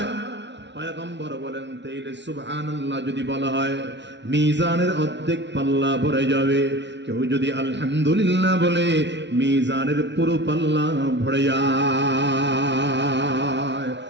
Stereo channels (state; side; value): late; left; 0.51 ms